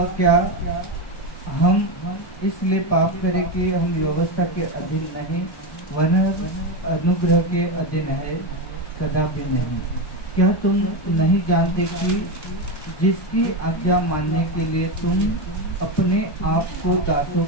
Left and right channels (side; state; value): right; late; 1.2 ms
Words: क्या हम इसलिए पाप करें कि हम व्यवस्था के अधीन नहीं वरन अनुग्रह के अधीन है? कदापि नहीं। क्या तुम नहीं जानते कि जिसकी आज्ञा मानने के लिए तुम अपने आप को दासों